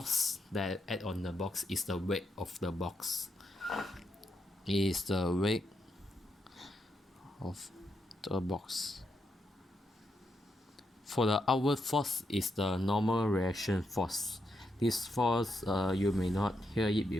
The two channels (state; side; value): normal; both; correlation 0.82